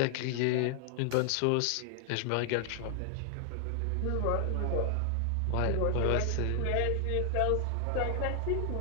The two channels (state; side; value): different; both; correlation 0.00